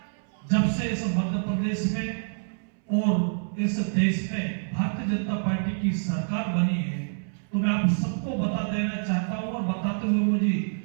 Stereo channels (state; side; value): silent; left; 60 dB below the other